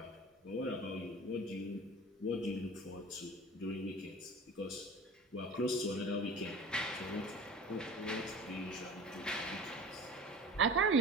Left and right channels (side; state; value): both; normal; correlation 0.39